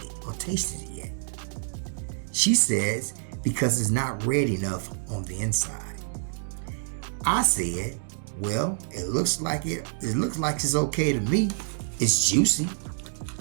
or tasted it yet? She says, because it's not red enough on the inside. I said, well, it looks like it's okay to me. It's juicy,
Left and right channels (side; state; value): left; silent; digital silence